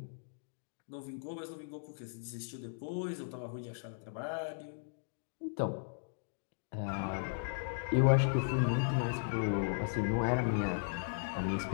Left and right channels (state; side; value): silent; right; digital silence